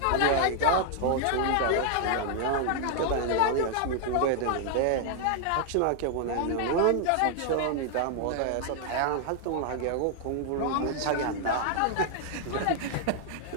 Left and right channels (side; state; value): both; different; correlation 0.00